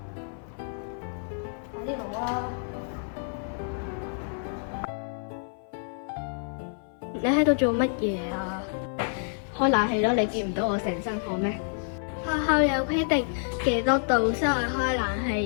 快啲攞啊！你喺度做乜嘢啊？開冷氣咯，你見唔到我成身汗咩？學校有規定幾多度先可以開冷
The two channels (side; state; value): right; silent; 55 dB below the other